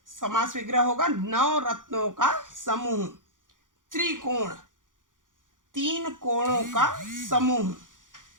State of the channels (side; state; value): left; late; 0.88 ms